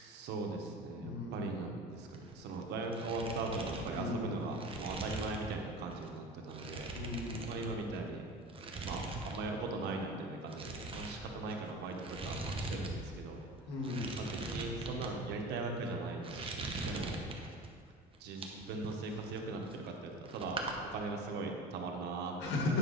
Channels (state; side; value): normal; both; correlation 0.35